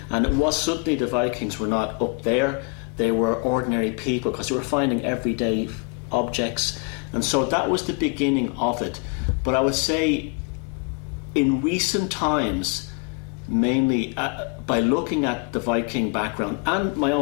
And it was suddenly the Vikings were not up there; they were ordinary people, because they were finding everyday objects, and so that was the beginning of it. But I would say, in recent times, mainly by looking at the Viking background and my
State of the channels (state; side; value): quieter; right; 31.0 dB